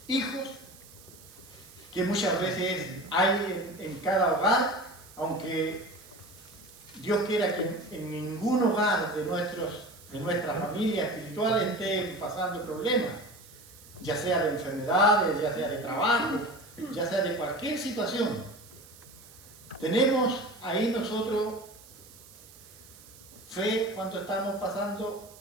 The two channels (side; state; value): right; noise; hiss, 21 dB below the sound